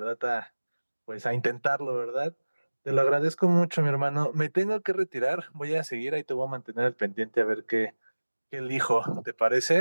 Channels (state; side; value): inverted; both; correlation -1.00